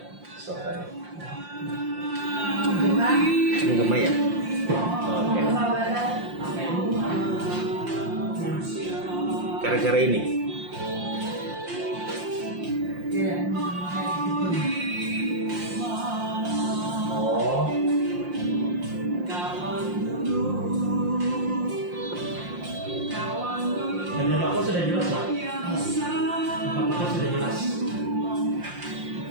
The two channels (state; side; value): late; left; 5.7 ms